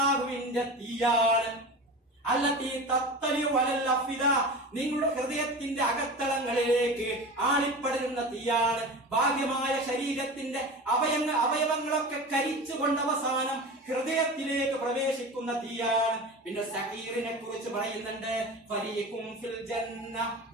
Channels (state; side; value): normal; both; correlation 0.31